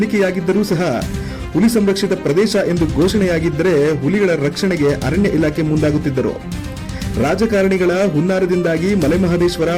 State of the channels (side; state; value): both; identical; correlation 1.00